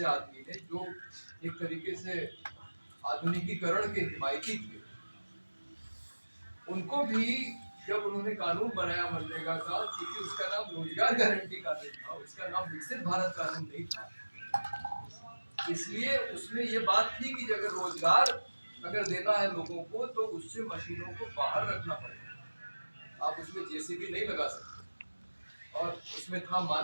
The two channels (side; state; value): both; inverted; correlation -1.00